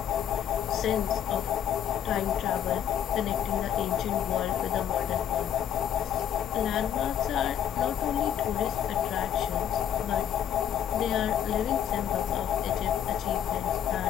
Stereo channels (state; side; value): quieter; right; 9.8 dB